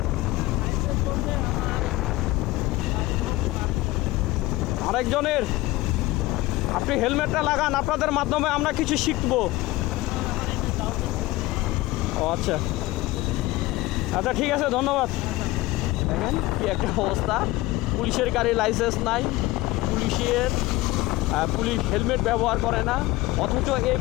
আরেকজনের। আপনি হেলমেটটা লাগান, আপনাদের মাধ্যমে আমরা কিছু শিখবো। ও আচ্ছা আচ্ছা, ঠিক আছে, ধন্যবাদ। দেখেন কি একটা অবস্থা, পুলিশের গাড়ি লাইসেন্স নাই, পুলিশ হেলমেট ব্যবহার করে না, অথচ এই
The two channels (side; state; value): right; quieter; 19.0 dB